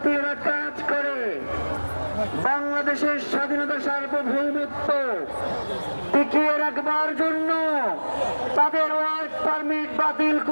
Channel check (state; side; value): inverted; both; correlation -1.00